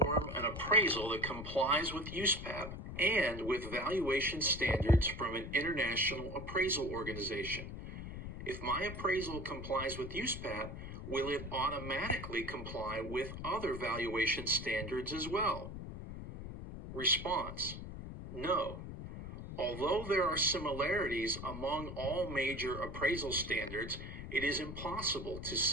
an appraisal that complies with USPAP and with valuation standards from an international appraisal organization. If my appraisal complies with USPAP, will it automatically comply with other valuation standards as well? Response. No. Although there are similarities among all major appraisal standards, it is impossible to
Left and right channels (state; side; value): noise; left; rumble, 8 dB below the sound